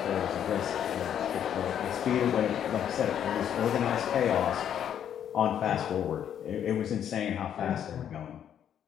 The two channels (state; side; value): quieter; right; 9.4 dB